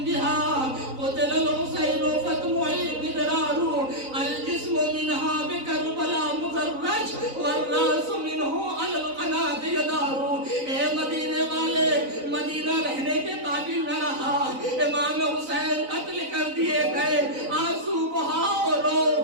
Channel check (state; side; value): late; left; 3.9 ms